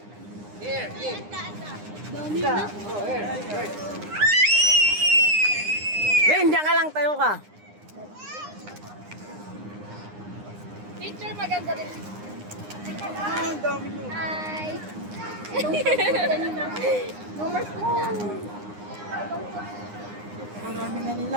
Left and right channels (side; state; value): left; late; 9.8 ms